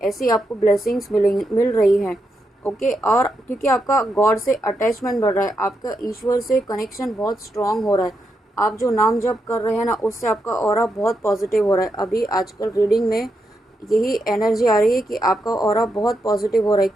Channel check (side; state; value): both; normal; correlation 0.83